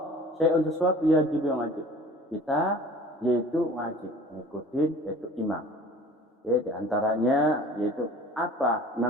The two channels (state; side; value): normal; both; correlation 0.45